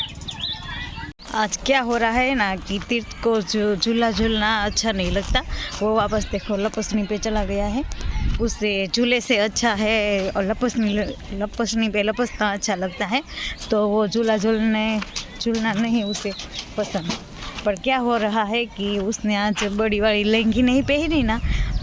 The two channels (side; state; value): both; identical; correlation 1.00